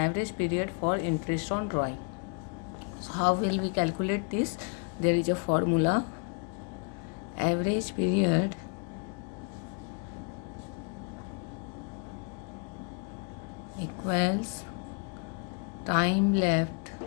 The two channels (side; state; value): right; quieter; 34.7 dB